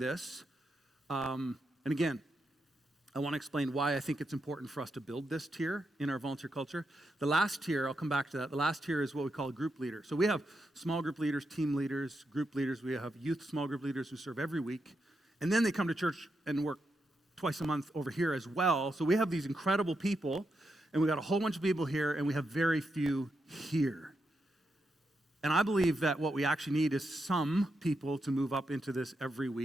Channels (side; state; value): both; normal; correlation 0.84